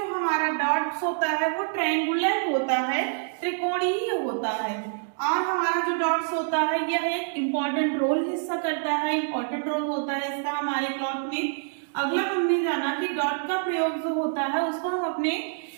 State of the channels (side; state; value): left; silent; digital silence